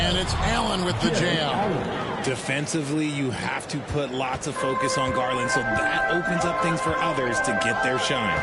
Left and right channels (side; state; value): both; identical; correlation 1.00